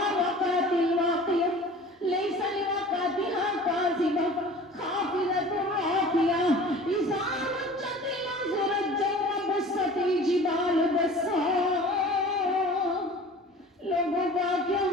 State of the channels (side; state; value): both; normal; correlation 0.43